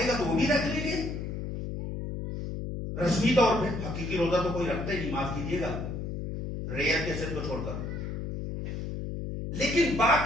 گا تو وہ بھی رکھ لیں گے رسمی طور پہ، حقیقی روزہ تو کوئی رکھتا ہی نہیں، معاف کیجیے گا، ریئر کیسٹ کو چھوڑ کر، لیکن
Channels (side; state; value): left; noise; hum, 5 dB below the sound